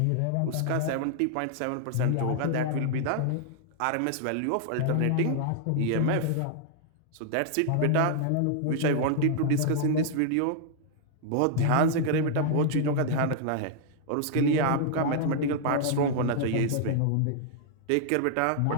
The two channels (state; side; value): different; both; correlation -0.01